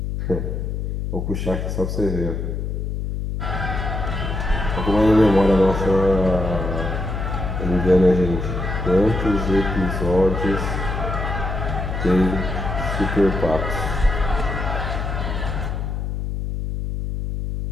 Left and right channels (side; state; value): left; noise; hum, 3 dB below the sound